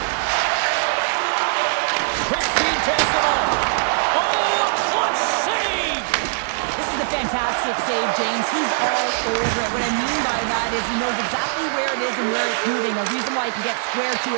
Quick feed to SNO. Oh, a clutch save! This is a fantastic save, James. He's all over it. What I mean by that is he knows exactly where it is and where it's moving. A reason why he can get square to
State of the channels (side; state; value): left; silent; digital silence